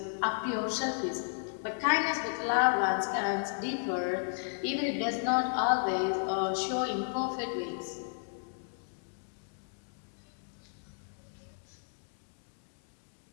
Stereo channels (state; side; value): silent; right; digital silence